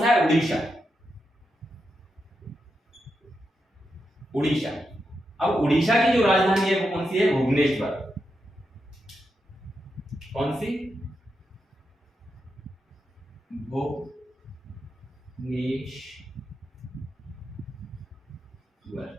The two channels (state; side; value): normal; both; correlation 0.86